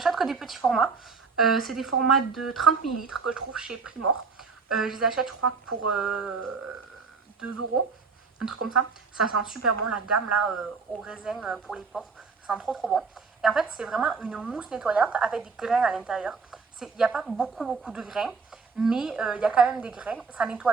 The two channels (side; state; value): left; quieter; 4.9 dB